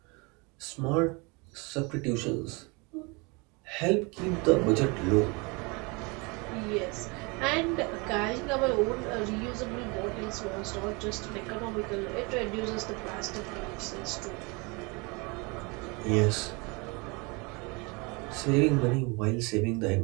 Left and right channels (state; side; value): quieter; left; 28.7 dB